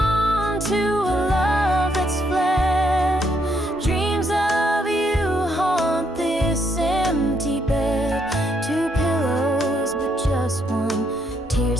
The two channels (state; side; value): normal; both; correlation 0.74